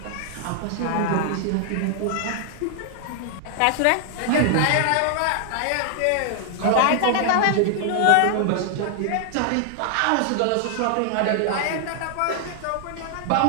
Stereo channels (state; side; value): different; both; correlation 0.00